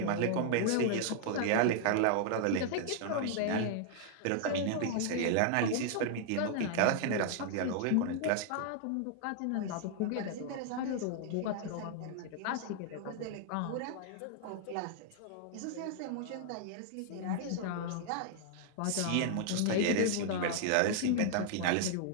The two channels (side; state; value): both; different; correlation 0.00